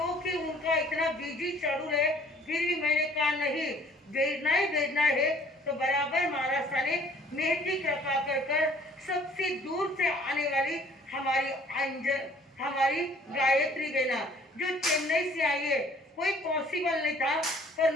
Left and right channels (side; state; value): both; normal; correlation 0.56